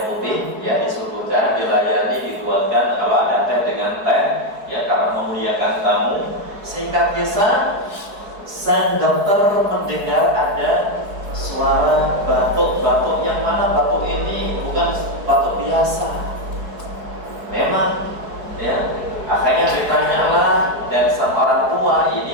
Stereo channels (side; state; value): left; late; 4.7 ms